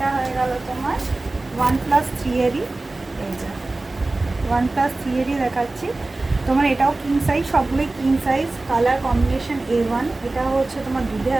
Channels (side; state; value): left; quieter; 3.1 dB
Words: হয়ে গেল তোমার 1+3 এরই, এই যে 1+3 এরই দেখাচ্ছি তোমার। এটাও কিং সাইজ, সবগুলোই king size. Colour combination A1। এটা হচ্ছে তোমার দুধে